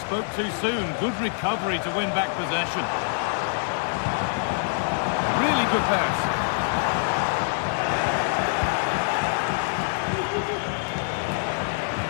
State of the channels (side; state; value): right; silent; digital silence